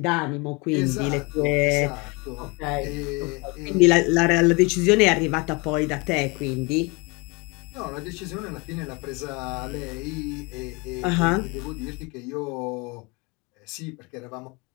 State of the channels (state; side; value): quieter; right; 28.3 dB